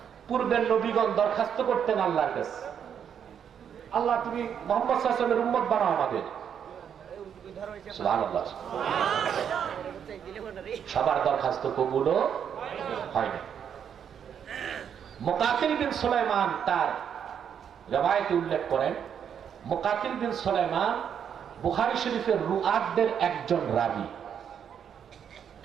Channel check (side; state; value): left; quieter; 8.2 dB